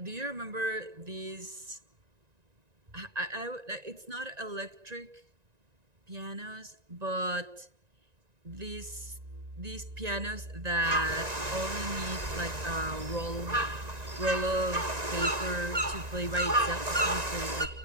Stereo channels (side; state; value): left; late; 1.9 ms